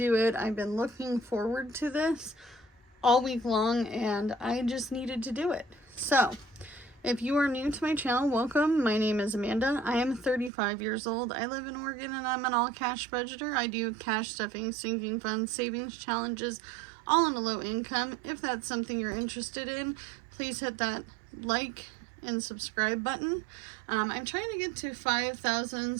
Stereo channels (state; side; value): drops out; left; at 10.5 s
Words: it. I've been looking forward to this all week long and I just needed to do it. So, if you are new to my channel, welcome. My name is Amanda. I am 35 years old. I live in Oregon and I'm an all-cash budgeter. I do cash stuffing, sinking funds, savings challenges, all on a low income. If that's something you're interested in, please hit that like and subscribe button. I'm trying to get to 5,000